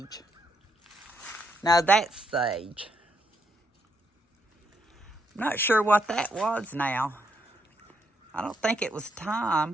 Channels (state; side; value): normal; both; correlation 0.76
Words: No, that's sage. I'm not sure what that was now. I don't think it was